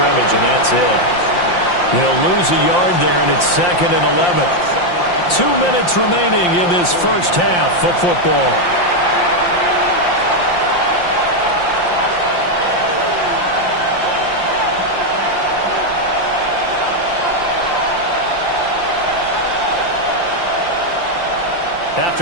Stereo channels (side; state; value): right; late; 5.7 ms